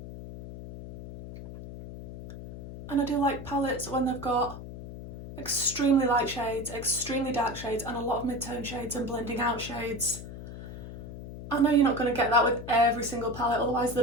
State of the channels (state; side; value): noise; left; hum, 11 dB below the sound